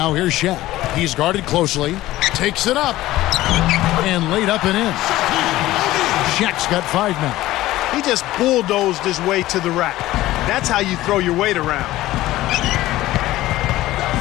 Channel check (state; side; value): quieter; right; 16.2 dB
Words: here's Shaq. He's guarded closely, takes it up, and laid up and in. Shaq's got 5 now. He just bulldozed his way to the rack. That's how you throw your weight around.